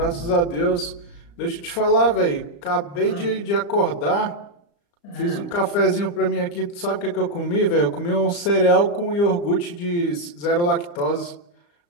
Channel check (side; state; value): right; late; 35 ms